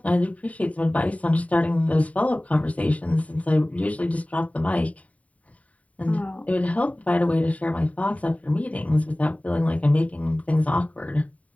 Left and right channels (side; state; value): right; late; 0.068 ms